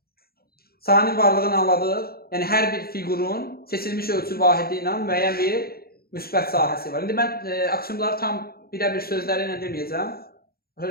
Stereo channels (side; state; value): right; late; 0.44 ms